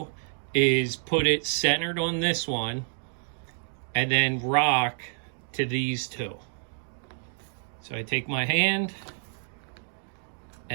is put it centered on this one and then rock to these two. So I take my hand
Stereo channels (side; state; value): left; silent; digital silence